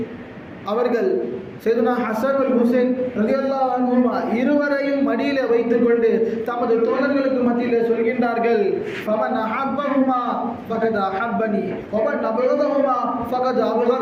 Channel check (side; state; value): both; identical; correlation 1.00